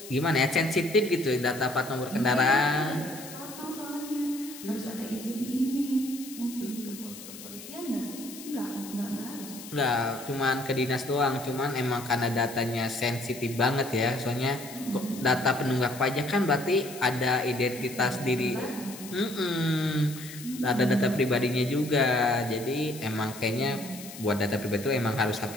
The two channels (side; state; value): left; noise; hiss, 14 dB below the sound